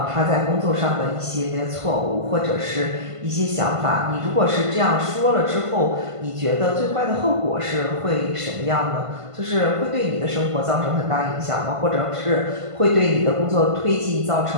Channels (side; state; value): left; late; 1.5 ms